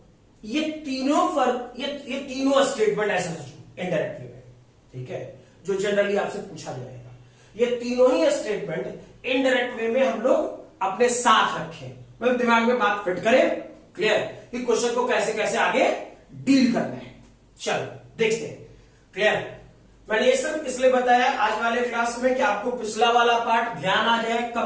ये तीनों स्टेटमेंट ऐसा सोचो इनडायरेक्ट वे में। ठीक है, जो जनरली आपसे पूछा जाएगा, ये तीनों ही स्टेटमेंट इनडायरेक्ट वे में हम लोग अपने साथ रखें, मतलब दिमाग में बात फिट करें। क्लियर? कि क्वेश्चन को कैसे कैसे आगे डील करना है। चलो देखते हैं। क्लियर? मैंने ये सब इसलिए बताया आज वाले क्लास में कि आपको पिछला वाला पार्ट ध्यान आ जाए,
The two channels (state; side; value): identical; both; correlation 1.00